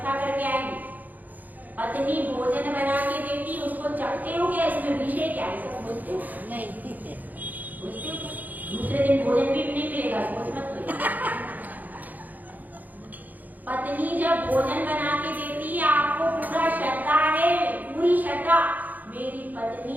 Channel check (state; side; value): late; left; 0.082 ms